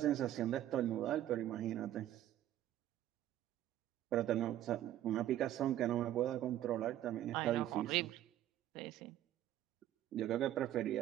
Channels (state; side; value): quieter; left; 12.6 dB